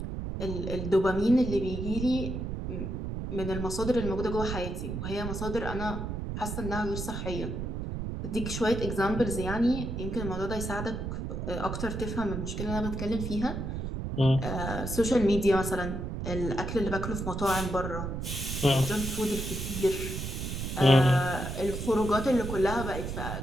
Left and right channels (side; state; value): right; noise; rumble, 4 dB below the sound